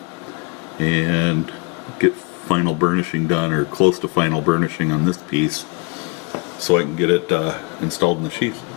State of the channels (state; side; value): quieter; right; 29.2 dB